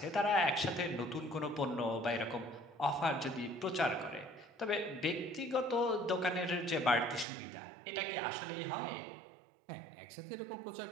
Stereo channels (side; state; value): left; drops out; at 7.2 s